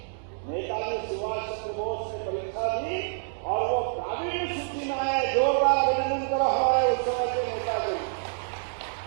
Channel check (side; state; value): left; silent; digital silence